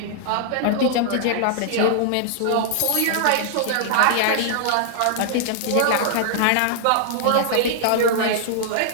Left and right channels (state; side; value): different; both; correlation -0.01